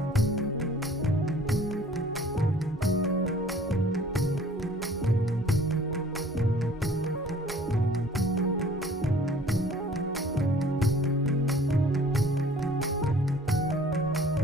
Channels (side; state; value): both; normal; correlation 0.52